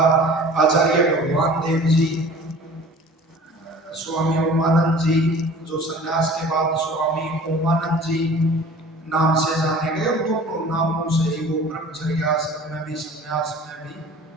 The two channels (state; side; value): normal; both; correlation 0.45